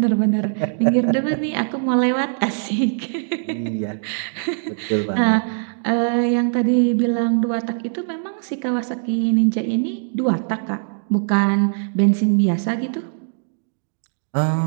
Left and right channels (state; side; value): silent; left; digital silence